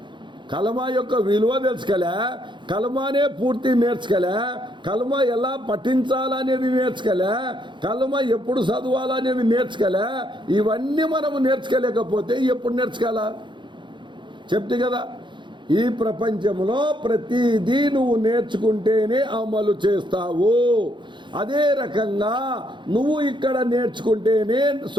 కలమా యొక్క విలువ తెలుసుకోలే, కలమానే పూర్తి నేర్చుకోలే, కలమా ఎలా పఠించాలనేది నేర్చుకోలే, కలమా ఎప్పుడు చదవాలనేది నేర్చుకోలే. ఇవన్నీ మనము నేర్చుకోలేకపోతే ఎప్పుడు నేర్చుకోవాలా? చెప్తే కదా, ఈ ప్రపంచంలో ప్రతిదీ నువ్వు నేర్చుకుంటేనే అమలు చేస్తావు. అదే రకంగా నువ్వు ఇక్కడ నేర్చుకుంటేనే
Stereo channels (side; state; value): left; late; 0.23 ms